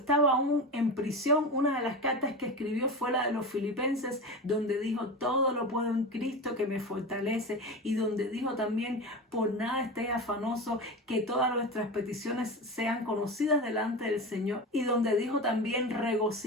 aún en prisión. Una de las cartas que escribió fue la de los Filipenses, donde dijo: todo lo puedo en Cristo que me fortalece, y donde dijo también: por nada estéis afanosos, que todas nuestras peticiones sean conocidas delante del Señor, y donde dijo también:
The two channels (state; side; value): normal; both; correlation 0.25